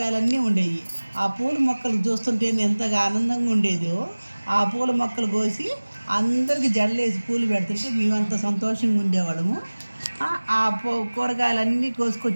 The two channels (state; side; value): inverted; both; correlation -1.00